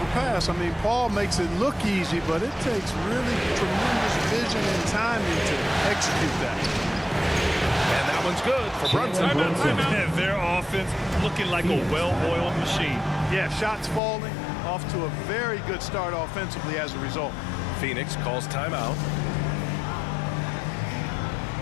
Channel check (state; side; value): drops out; right; at 14.0 s